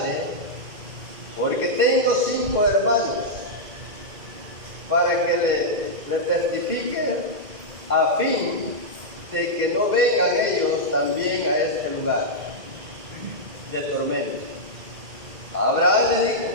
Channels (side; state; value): left; late; 2.1 ms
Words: porque tengo 5 hermanos, para que le testifiquen, a fin de que no vengan ellos también a este lugar de tormento. Abraham le dijo: